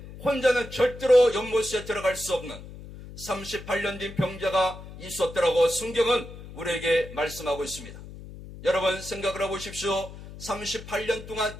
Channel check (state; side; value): noise; left; hum, 14 dB below the sound